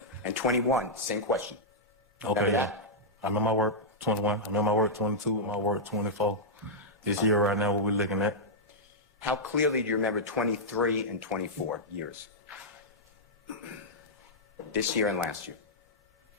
And 21, same question. Okay. Remember Yeah. that? I'm in my work 21. I'm in my work 22. My work 24. This year right now, what we're looking at. How clearly do you remember 23 and 24 years? This year and last year.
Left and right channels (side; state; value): both; normal; correlation -0.09